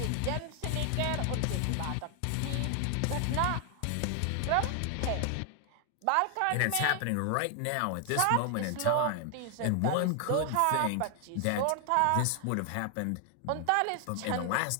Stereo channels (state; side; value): different; both; correlation 0.00